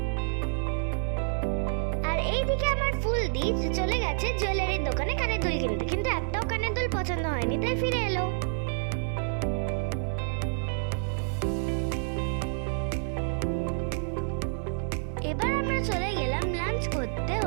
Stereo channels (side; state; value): left; silent; 57 dB below the other